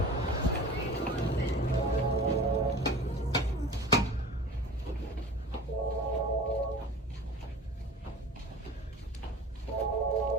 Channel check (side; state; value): both; normal; correlation 0.39